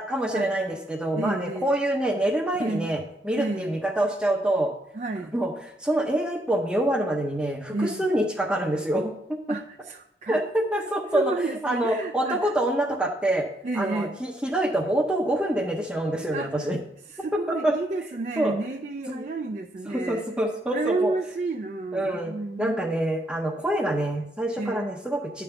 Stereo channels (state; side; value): normal; both; correlation 0.75